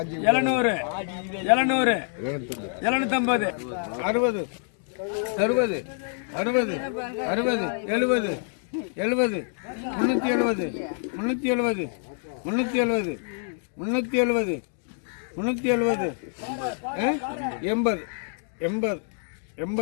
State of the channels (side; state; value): right; silent; 56 dB below the other